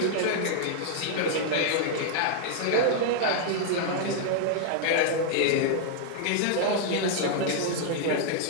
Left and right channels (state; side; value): different; both; correlation -0.01